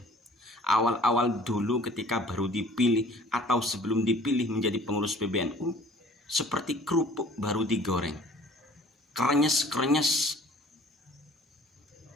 Awal-awal dulu ketika baru dipilih atau sebelum dipilih menjadi pengurus PBNU, seperti kerupuk baru digoreng, krenyes-krenyes.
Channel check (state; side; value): normal; both; correlation 0.52